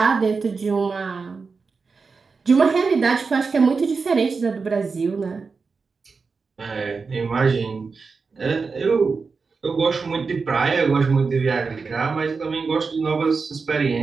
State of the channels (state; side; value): quieter; left; 4.7 dB